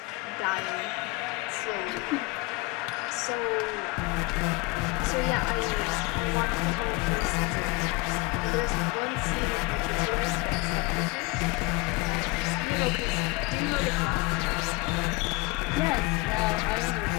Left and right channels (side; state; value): right; quieter; 23.7 dB